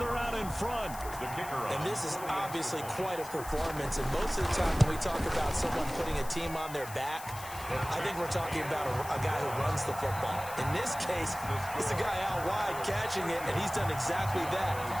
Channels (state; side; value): noise; left; hiss, 14 dB below the sound